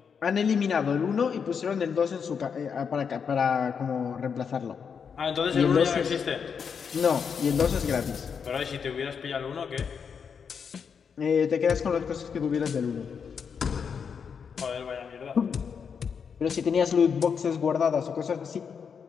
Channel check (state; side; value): quieter; right; 6.5 dB